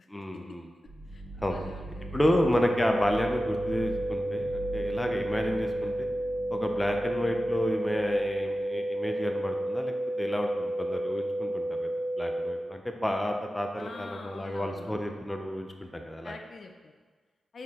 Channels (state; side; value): normal; both; correlation 0.94